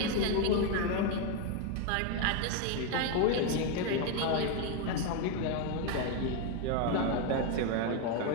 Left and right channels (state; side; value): different; both; correlation 0.01